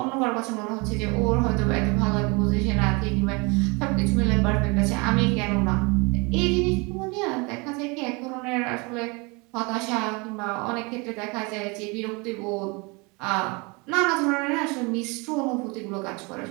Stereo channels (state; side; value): quieter; left; 28.6 dB